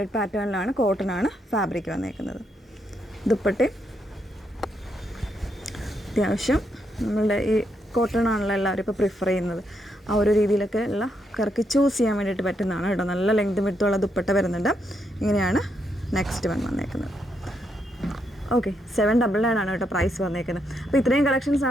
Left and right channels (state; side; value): normal; both; correlation 0.79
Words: പാറ്റേണിലാണ്, കോട്ടൺ ആണ് ഫാബ്രിക് വന്നേക്കുന്നത്. ദുപ്പട്ടയും അത്യാവശ്യം നമ്മളുടെ ഈ കോട്ടൺ ആണല്ലോ എല്ലാവരും ഇപ്പോൾ പ്രിഫർ ചെയ്യുന്നത്. ആ ഒരു രീതിയിലൊക്കെ ഉള്ള കറക്കി ചൂസ് ചെയ്യാൻ വേണ്ടിയിട്ട് പറ്റുന്നതാണ് കേട്ടോ. നല്ല ലെങ്ത് വിഡ്ത്തുള്ള ദുപ്പട്ട വരുന്നുണ്ട്. ഇങ്ങനെയാണ് നെക്സ്റ്റ് വൺ വന്നേക്കുന്നത്. ഓക്കെ, 799 ആണ് കേട്ടോ പ്രൈസ് വന്നേക്കുന്നത്. അപ്പോൾ ഇത്രയും കളക്ഷൻസ്